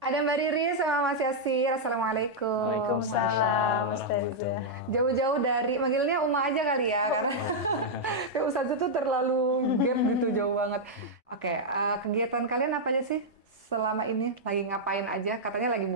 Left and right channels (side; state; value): both; normal; correlation -0.05